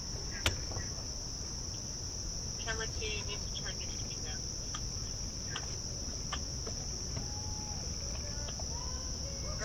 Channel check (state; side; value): noise; right; hiss, 27 dB below the sound